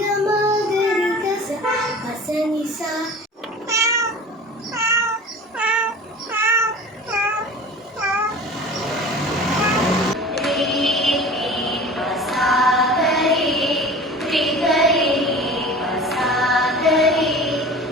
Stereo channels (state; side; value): normal; both; correlation 0.39